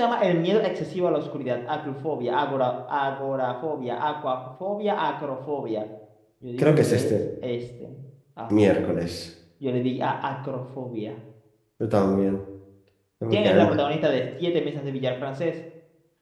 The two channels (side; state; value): both; identical; correlation 1.00